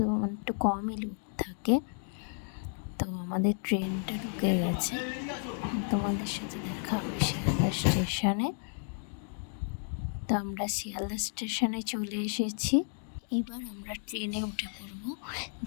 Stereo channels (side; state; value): right; silent; 56 dB below the other